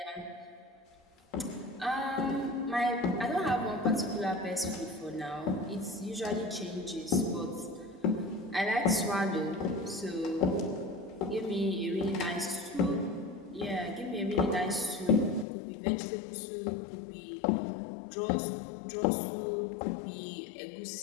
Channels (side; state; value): right; drops out; at 15.5 s